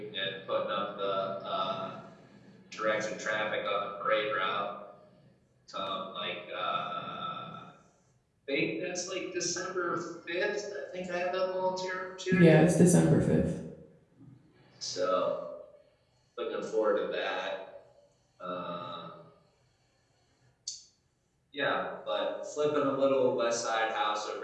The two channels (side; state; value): both; identical; correlation 1.00